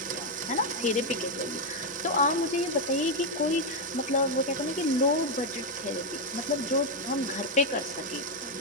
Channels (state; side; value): normal; both; correlation 0.03